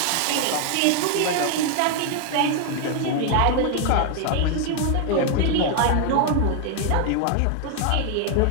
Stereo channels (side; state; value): both; different; correlation 0.01